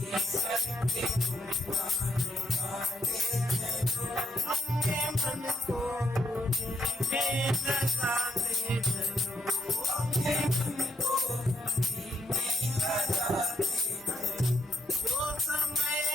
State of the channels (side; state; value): both; normal; correlation 0.76